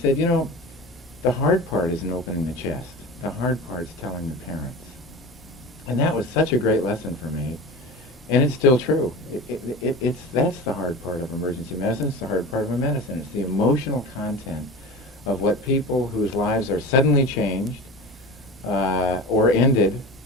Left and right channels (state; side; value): normal; both; correlation 0.32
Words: the hard part isn't opening the chest. The hard part's telling the parents. And that was such a great lesson for me. And it's still true. That's the hard part of emergency medicine. It's the hard part of a medicine. It's the emotional content of what people whose lives are suddenly changed or ended,